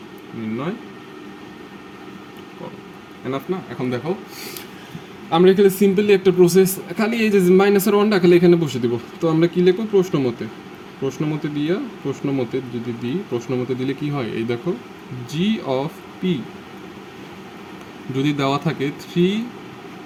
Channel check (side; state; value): both; identical; correlation 1.00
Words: নির্ণয় করো। এনাফ না। এখন দেখো আমরা এখানে সিম্পলি একটা প্রসেস, খালি এই যে -1টা খালি এখানে বসে দিব। তো আমরা কি লিখবো, প্রশ্নমতে দিয়া, প্রশ্নমতে যদি দিই, প্রশ্নমতে দিলে কি হয়, এই দেখো জি অফ পি যদি দেওয়া থাকে